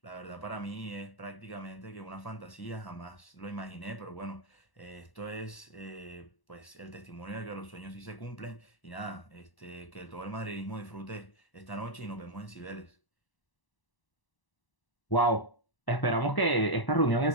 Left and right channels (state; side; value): late; right; 1.0 ms